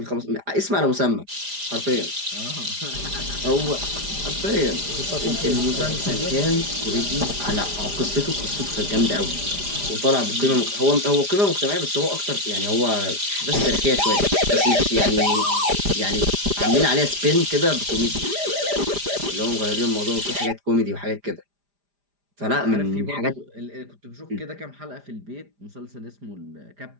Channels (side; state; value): left; late; 4.9 ms